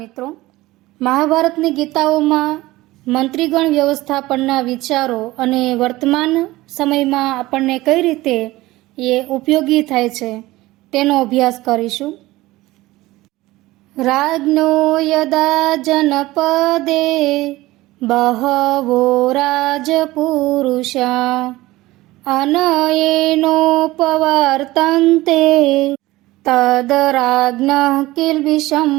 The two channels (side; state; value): left; quieter; 18.5 dB